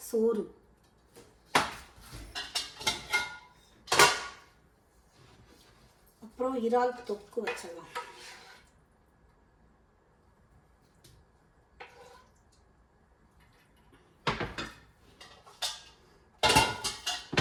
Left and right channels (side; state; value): both; identical; correlation 1.00